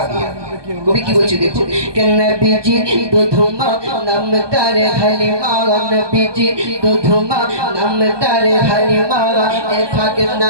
কবি কি বলছে দেখো কে নবীজির দুধমা নামটার হালিমা নবীজির দুধমা নামটার হালিমা এ ফাকে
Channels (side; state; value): left; late; 1.2 ms